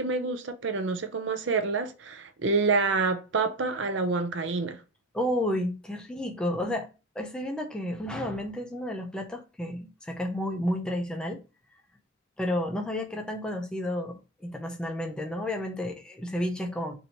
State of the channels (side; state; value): both; normal; correlation 0.30